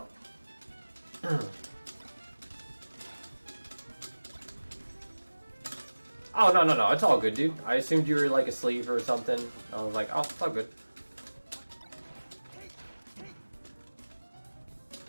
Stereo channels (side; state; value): both; inverted; correlation -1.00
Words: Oh no, it's all good, dude. I assumed you were like asleep or something. I was like, oh, it's all good.